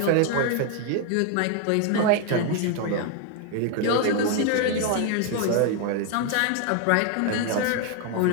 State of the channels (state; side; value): different; both; correlation 0.00